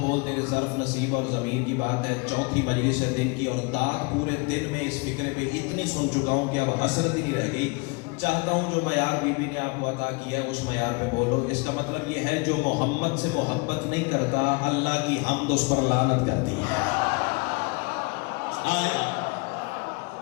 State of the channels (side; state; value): right; quieter; 29.4 dB